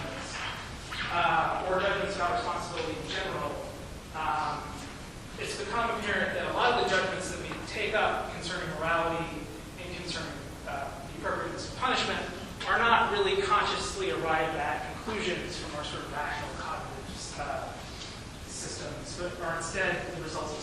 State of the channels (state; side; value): identical; both; correlation 1.00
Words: or judgments about responsibility in general, it's become apparent that a lot of the judgments that we take up concerning morality and concerning the appropriateness of punishment are not really consciously arrived at conclusions from our sort of rational cognitive systems, but are instead the results of